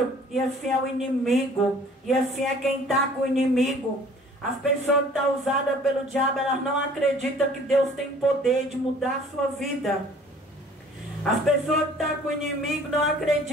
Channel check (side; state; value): both; normal; correlation 0.52